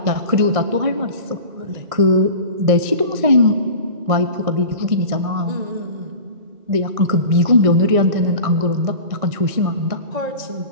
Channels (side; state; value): left; late; 1.6 ms